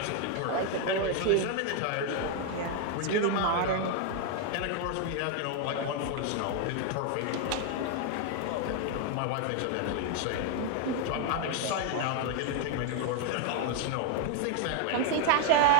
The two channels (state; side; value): different; both; correlation 0.00